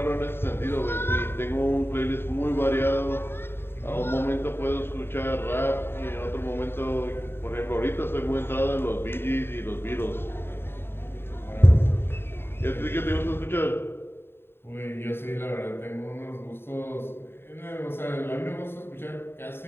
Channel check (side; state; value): right; late; 0.11 ms